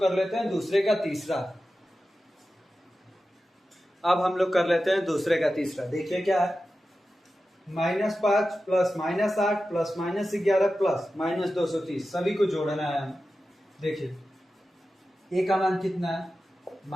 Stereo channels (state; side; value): normal; both; correlation 0.93